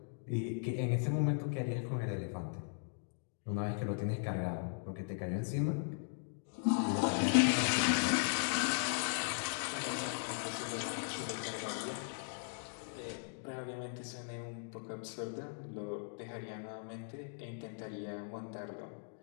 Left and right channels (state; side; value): silent; right; digital silence